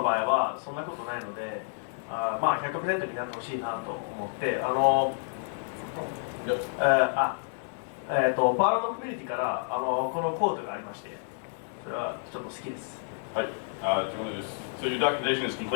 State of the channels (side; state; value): right; silent; digital silence